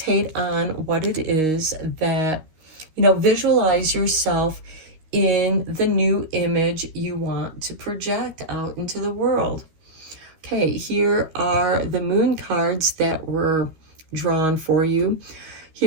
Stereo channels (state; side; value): late; left; 13 ms